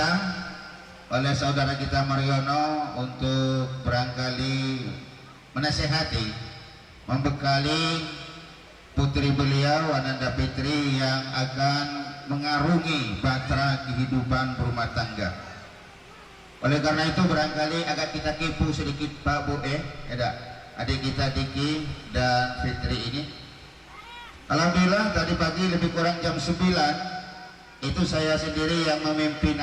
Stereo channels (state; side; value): identical; both; correlation 1.00